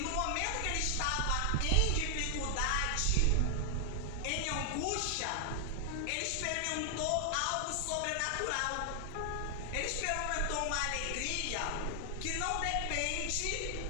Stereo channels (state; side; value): different; both; correlation 0.00